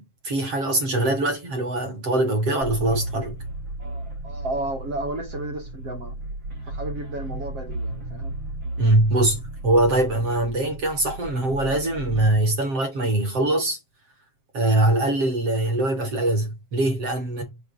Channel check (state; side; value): late; left; 7.5 ms